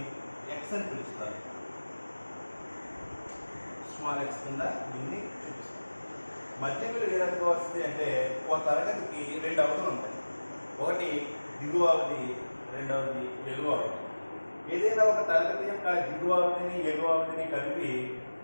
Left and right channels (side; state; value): both; inverted; correlation -1.00